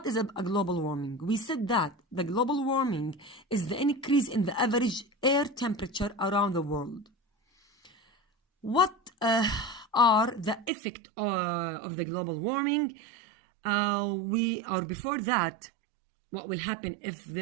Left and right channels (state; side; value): drops out; left; at 10.7 s